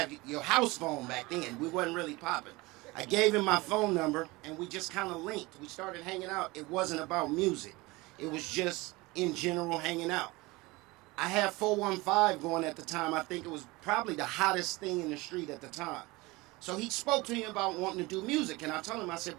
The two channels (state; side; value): quieter; left; 22.5 dB